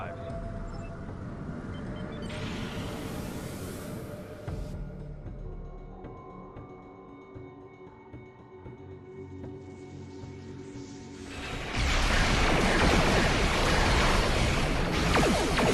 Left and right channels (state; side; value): identical; both; correlation 1.00